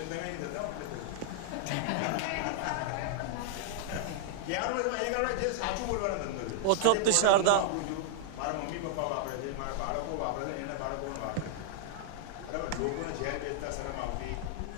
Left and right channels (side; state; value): both; different; correlation -0.01